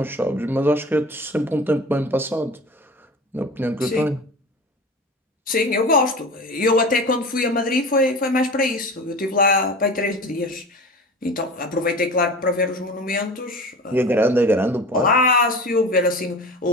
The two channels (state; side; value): normal; both; correlation 0.35